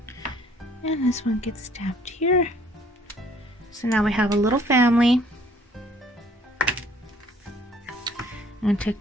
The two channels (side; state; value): both; normal; correlation 0.59